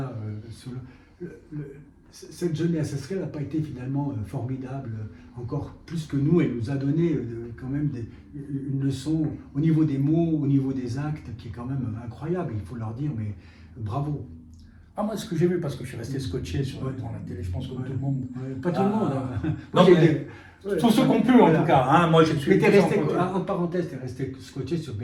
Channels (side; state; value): both; identical; correlation 1.00